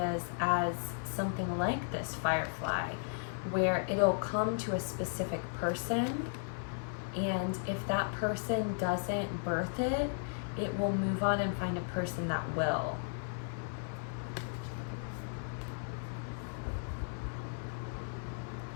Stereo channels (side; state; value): right; silent; 54 dB below the other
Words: as something like this firefly, where it'll come to a specific person, and if that person doesn't birth it, it will move on and find a person that will.